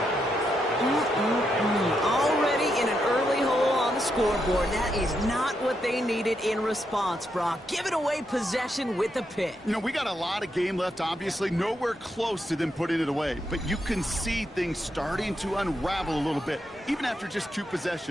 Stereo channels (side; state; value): both; normal; correlation 0.81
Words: Already in an early hole on the scoreboard. That is not what they needed in response, Brock. Giving away possession with the pick. You know, we got a lot of game left, obviously. Nowhere close to them putting it away. But you can see things starting to unravel a little bit, even after just 2